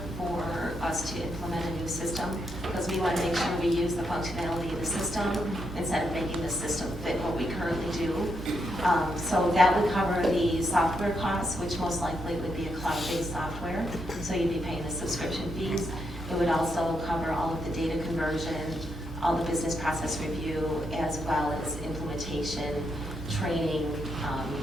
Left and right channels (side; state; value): both; normal; correlation 0.80